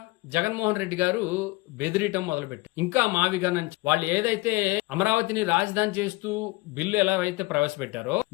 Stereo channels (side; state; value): right; quieter; 22.3 dB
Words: జగన్మోహన్ రెడ్డి గారు బెదిరియటం మొదలుపెట్టారు. ఇంకా మావిగా నుంచి వాళ్ళు ఏదైతే అమరావతిని రాజధాని చేస్తూ బిల్లు ఎలా అయితే ప్రవేశపెట్టారో